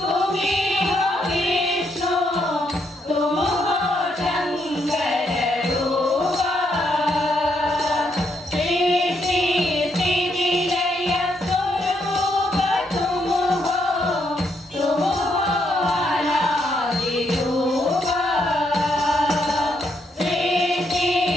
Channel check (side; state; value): both; normal; correlation 0.76